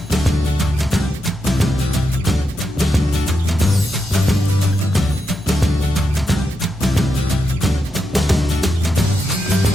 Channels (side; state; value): both; normal; correlation 0.85